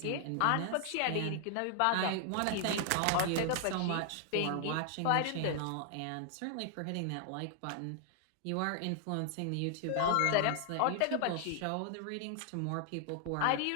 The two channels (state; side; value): different; both; correlation 0.00